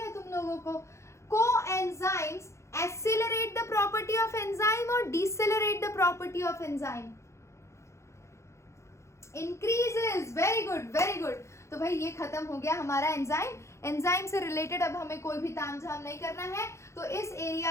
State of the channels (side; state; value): right; late; 0.14 ms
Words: तुम लोगों को। Coenzymes Accelerate the property of enzyme or decelerate the property of enzyme? Increases. Very good, very good. तो भाई ये खत्म हो गया हमारा एंजाइम. एंजाइम से रिलेटेड अब हमें कोई भी तामझाम नहीं करना है, तो इस